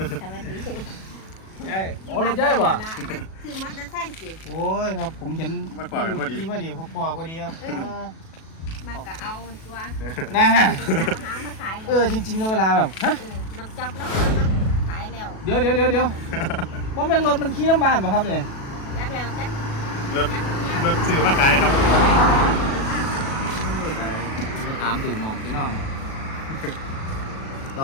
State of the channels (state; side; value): late; right; 37 ms